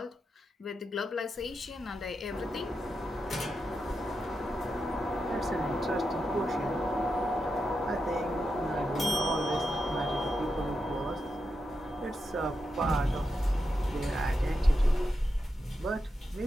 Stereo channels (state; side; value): normal; both; correlation 0.87